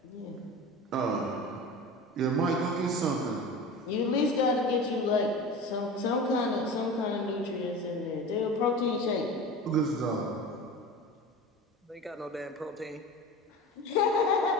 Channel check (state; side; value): normal; both; correlation 0.32